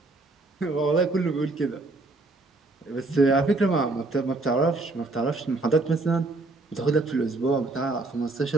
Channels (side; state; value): left; quieter; 3.1 dB